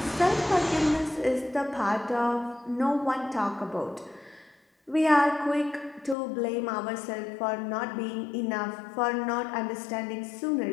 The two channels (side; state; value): right; drops out; at 6.2 s